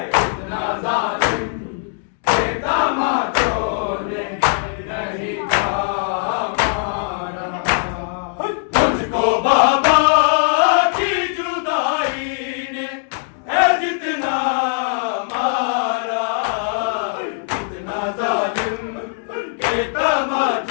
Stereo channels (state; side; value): silent; right; digital silence